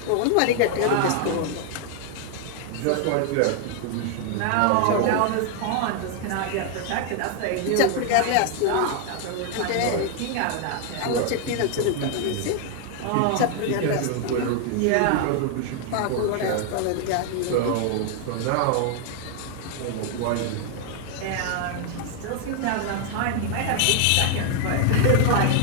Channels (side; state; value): both; different; correlation 0.00